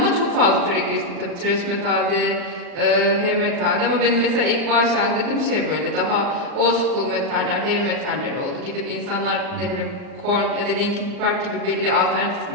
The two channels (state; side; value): late; left; 39 ms